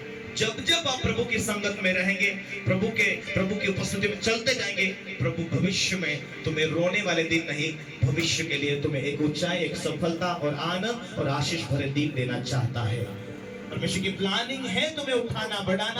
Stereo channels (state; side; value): identical; both; correlation 1.00